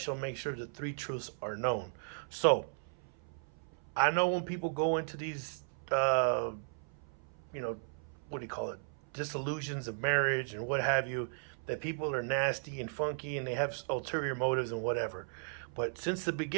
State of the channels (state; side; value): silent; left; 54 dB below the other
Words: make sure the three truths are known. So I know when people go into these, what do you call it, disillusions of marriage and what have you, that people are nasty and funky and they have ulterior motives and whatever. But since the